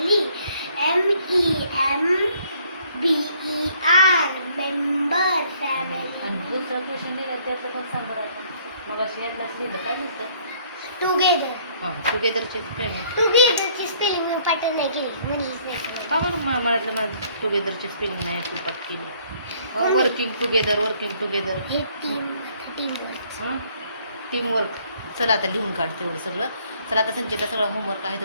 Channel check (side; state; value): both; inverted; correlation -0.62